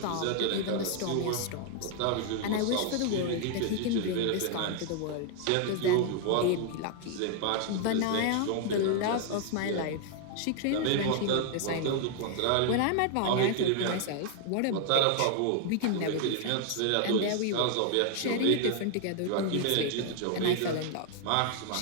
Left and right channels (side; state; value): both; different; correlation 0.00